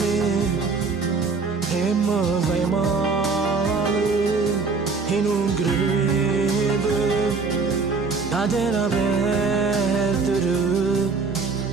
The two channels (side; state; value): left; quieter; 4.5 dB